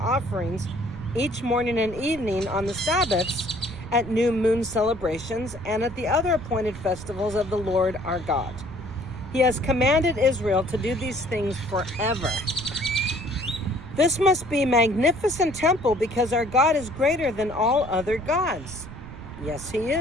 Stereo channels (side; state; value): right; noise; rumble, 14 dB below the sound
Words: offerings each morning and evening on the Sabbaths, at new moon celebrations, and at the other appointed festivals of the Lord our God. He has commanded Israel to do these things forever. This must be a magnificent temple because our God is greater than all other gods." Yes, he